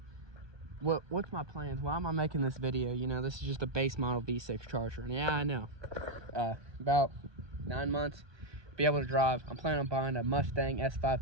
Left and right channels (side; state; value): left; late; 1.2 ms